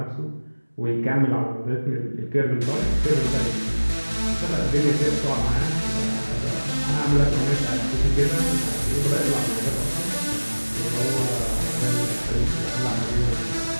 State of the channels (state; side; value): inverted; both; correlation -1.00